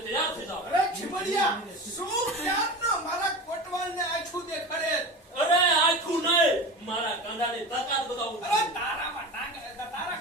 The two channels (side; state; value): both; normal; correlation 0.29